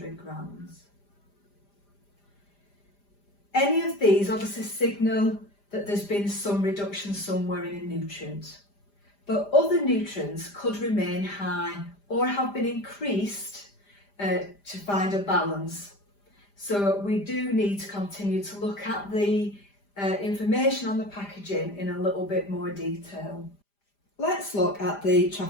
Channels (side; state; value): right; late; 5.0 ms